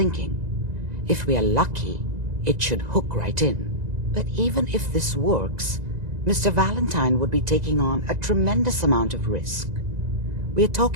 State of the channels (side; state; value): left; late; 1.9 ms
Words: If we are lucky, it should hook right in. But even if this works, Mr. Valentine would be taking on a tremendous amount of risk. We're